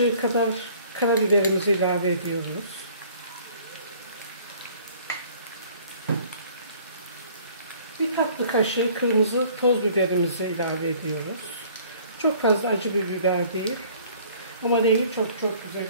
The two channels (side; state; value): both; inverted; correlation -0.54